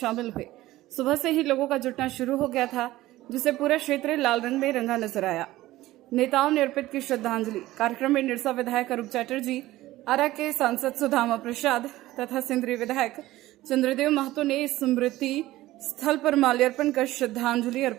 हुए। सुबह से ही लोगों का जुटना शुरू हो गया था, जिसे पूरा क्षेत्र लाल रंग में रंगा नजर आया। नेताओं ने अर्पित की श्रद्धांजलि। कार्यक्रम में निरसा विधायक अरूप चटर्जी, आरा के सांसद सुदामा प्रसाद तथा सिंदरी विधायक चंद्रदेव महतो ने स्मृति स्थल पर माल्यार्पण कर श्रद्धांजलि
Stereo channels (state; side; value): quieter; left; 16.6 dB